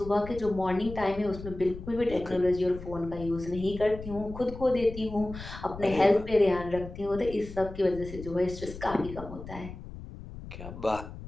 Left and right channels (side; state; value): left; noise; rumble, 12 dB below the sound